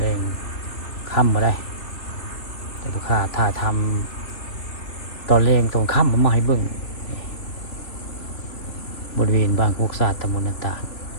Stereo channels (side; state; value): right; late; 3.2 ms